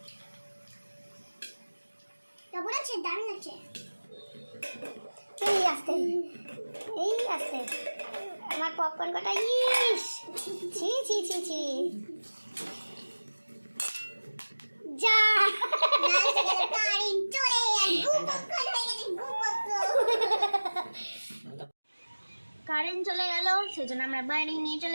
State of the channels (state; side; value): inverted; both; correlation -1.00